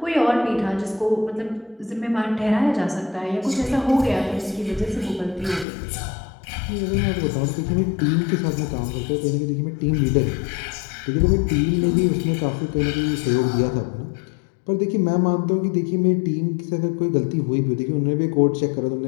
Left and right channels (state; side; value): drops out; right; at 5.7 s